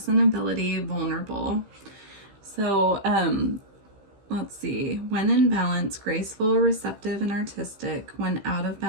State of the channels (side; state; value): left; late; 15 ms